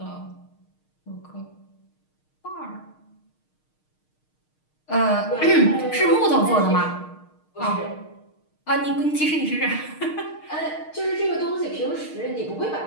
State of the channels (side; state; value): right; late; 6.5 ms